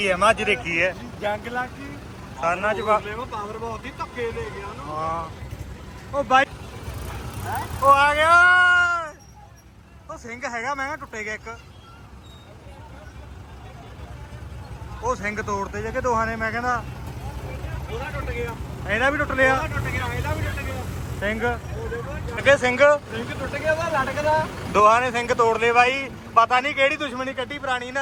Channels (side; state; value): both; identical; correlation 1.00